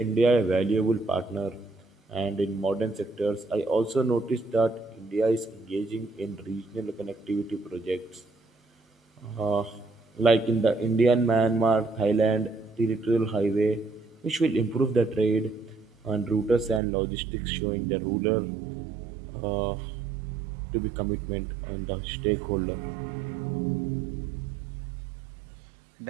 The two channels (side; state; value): left; drops out; at 16.8 s